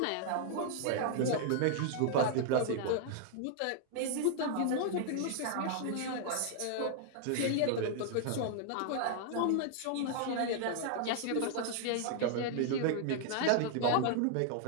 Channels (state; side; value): different; both; correlation 0.00